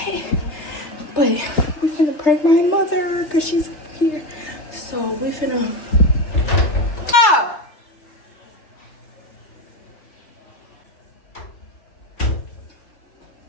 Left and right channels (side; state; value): right; late; 3.3 ms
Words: but we finna prank my mother because she's here. So we finna.